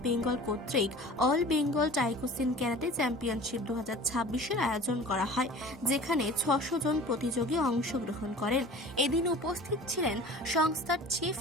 Bengal কর্তৃক all Bengal Taikoshin karate championship 2026-এর আয়োজন করা হয়, যেখানে 600 জন প্রতিযোগী অংশগ্রহণ করেন। এদিন উপস্থিত ছিলেন সংস্থার chief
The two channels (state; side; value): normal; both; correlation 0.42